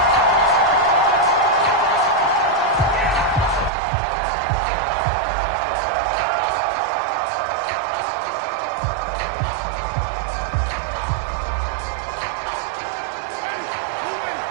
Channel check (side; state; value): left; drops out; at 3.7 s